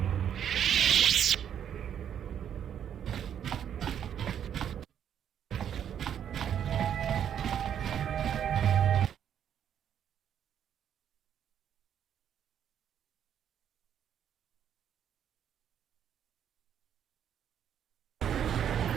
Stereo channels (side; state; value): left; quieter; 9.2 dB